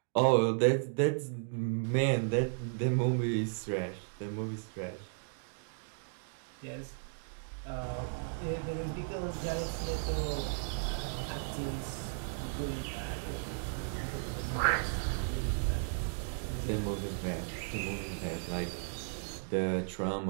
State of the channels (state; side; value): silent; left; digital silence